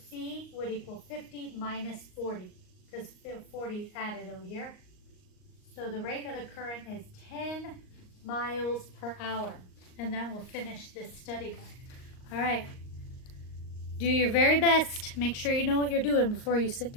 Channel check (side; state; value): right; late; 38 ms